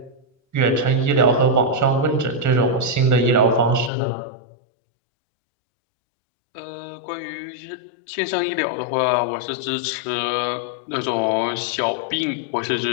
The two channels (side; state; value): right; drops out; at 3.9 s